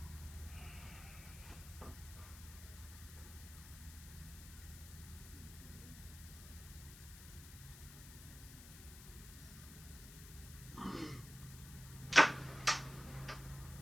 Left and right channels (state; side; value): noise; left; hiss, 14 dB below the sound